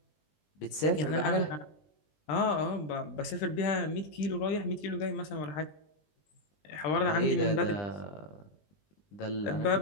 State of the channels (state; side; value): late; right; 20 ms